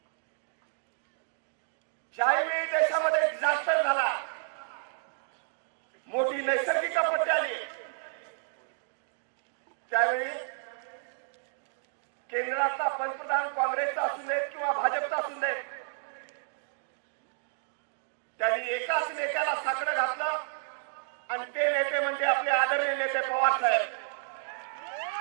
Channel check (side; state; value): left; silent; digital silence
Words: ज्यावेळी देशामध्ये डिझास्टर झाला, मोठी नैसर्गिक आपत्ती आली, त्यावेळी केंद्रातला पंतप्रधान काँग्रेसचा असू देत किंवा भाजपचा असू देत, त्यांनी एकाच नेत्याला साकडं घातलं आणि ते नेते म्हणजे आपले आदरणीय नेते पवार साहेब.